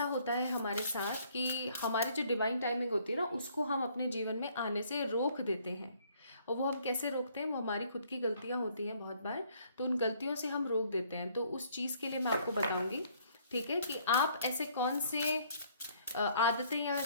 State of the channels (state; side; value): inverted; both; correlation -0.63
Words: होता है हमारे साथ कि हमारी जो डिवाइन टाइमिंग होती है ना उसको हम अपने जीवन में आने से रोक देते हैं. और वो हम कैसे रोकते हैं, वो हमारी खुद की गलतियां होती हैं बहुत बार, तो उन गलतियों से हम रोक देते हैं. तो उस चीज़ के लिए मैं आपको बताऊंगी ठीक है, कि आप ऐसे कौन से आदतें या